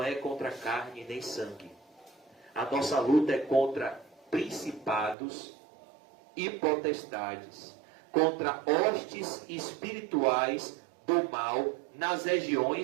é contra carne nem sangue. A nossa luta é contra principados e potestades, contra hostes espirituais do mal nas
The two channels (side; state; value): left; drops out; at 5.2 s